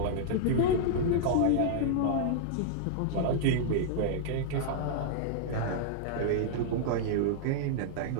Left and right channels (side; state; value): both; different; correlation -0.01